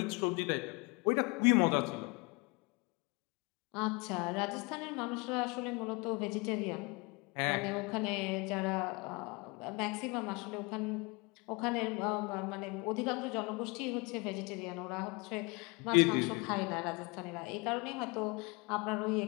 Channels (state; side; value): quieter; right; 28.2 dB